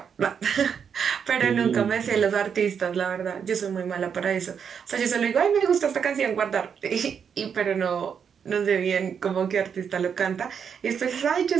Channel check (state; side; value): quieter; left; 7.2 dB